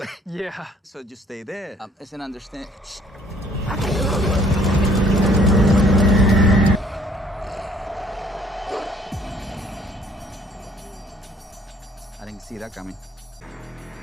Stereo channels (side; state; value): both; normal; correlation 0.59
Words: Yeah. So just stay there. It's an understand. I didn't see that coming.